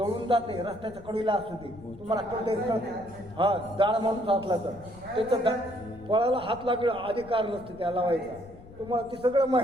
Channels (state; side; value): noise; left; rumble, 19 dB below the sound